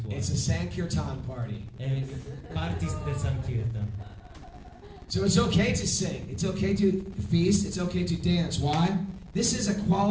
It's a Sankirtan party. È il party del Sankirtan. So it's okay to sing. It's okay to feast. It's okay to dance. Why? This is a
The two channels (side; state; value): both; identical; correlation 1.00